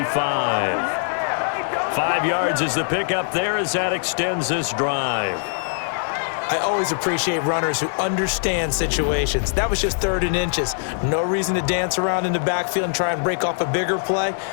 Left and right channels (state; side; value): silent; right; digital silence